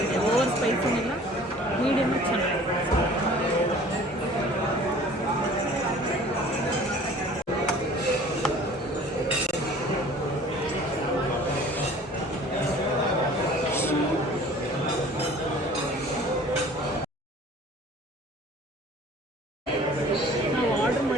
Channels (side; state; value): both; normal; correlation 0.48